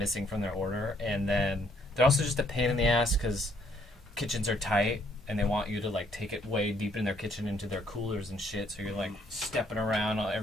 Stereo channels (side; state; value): both; normal; correlation 0.67